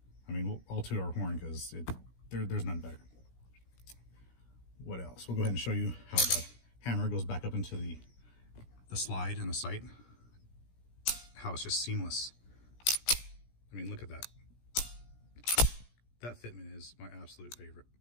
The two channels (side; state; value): right; late; 17 ms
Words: We'll all toot our horn because there's none better. What else? We'll go ahead and show you how the hammer goes back up into the slide and the sight. How it's just seamless. Look at that. That fitment is my absolute favorite.